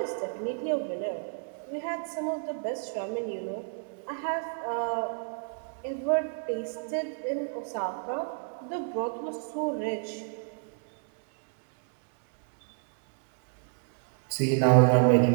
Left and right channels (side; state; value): left; silent; digital silence